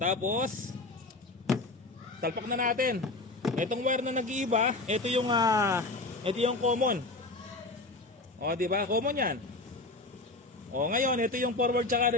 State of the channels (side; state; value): right; quieter; 3.1 dB